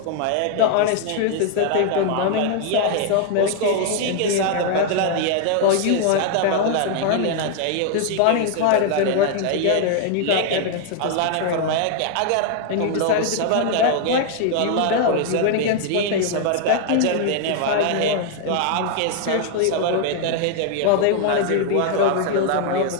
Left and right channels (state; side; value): different; both; correlation 0.00